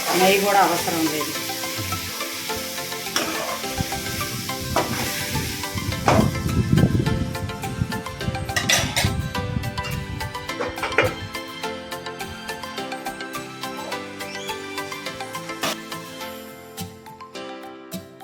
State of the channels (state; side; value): identical; both; correlation 1.00